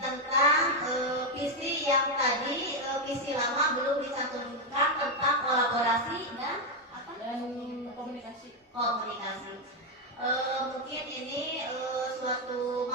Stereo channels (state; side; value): normal; both; correlation 0.04